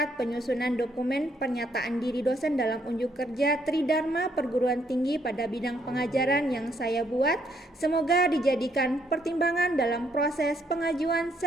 penyusunan dokumen pernyataan diri dosen dalam unjuk kerja Tridharma Perguruan Tinggi pada bidang pengajaran yang saya buat. Semoga dijadikan pertimbangan dalam proses pengajuan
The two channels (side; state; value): both; normal; correlation 0.70